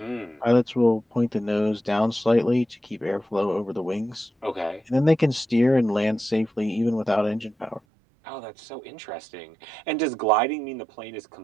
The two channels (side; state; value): left; drops out; at 7.8 s